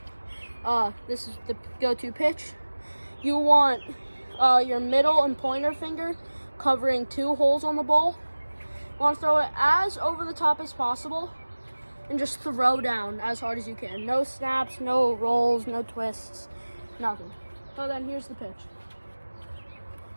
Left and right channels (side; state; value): both; inverted; correlation -1.00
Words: this is the go-to pitch. You want your middle and pointer finger covering two holes on the ball. You want to throw it as over the top as possible and just throw down as hard as you can. No snaps, no rolls, no twists, nothing. So then here's the pitch.